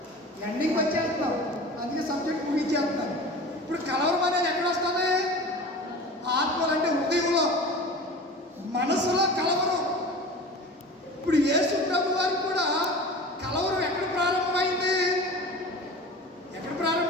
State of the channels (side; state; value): both; normal; correlation 0.36